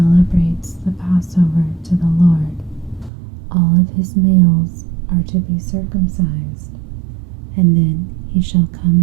the Passover to the Lord, all of his males are to be circumcised, and then he shall come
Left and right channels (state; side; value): drops out; left; at 3.1 s